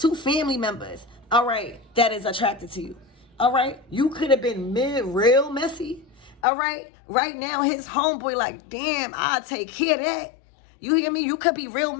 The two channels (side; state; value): right; drops out; at 6.4 s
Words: family members, all right, that is attracted to you. All right, you could have been real messy. All right, right now his homeboy like, damn, I'll take care of that. You hear me? You could be real